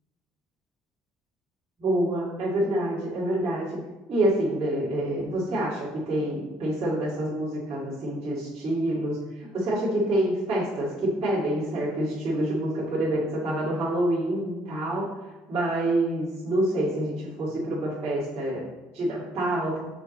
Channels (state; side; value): normal; both; correlation 0.66